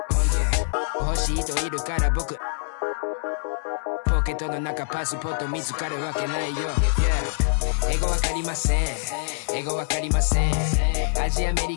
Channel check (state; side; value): silent; right; digital silence